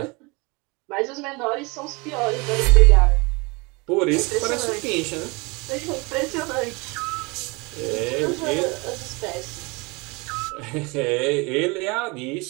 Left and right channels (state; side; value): quieter; left; 27.2 dB